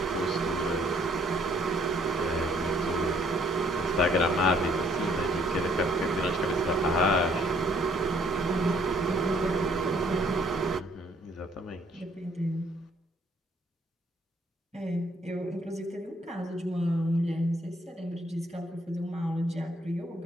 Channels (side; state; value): both; normal; correlation 0.64